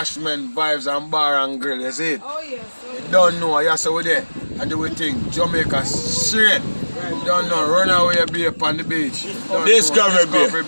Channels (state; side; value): inverted; both; correlation -1.00